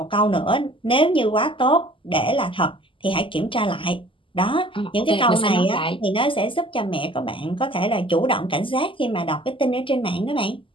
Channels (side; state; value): right; late; 0.25 ms